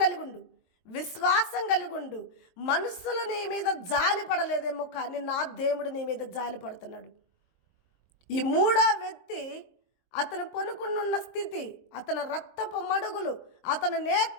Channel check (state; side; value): late; right; 23 ms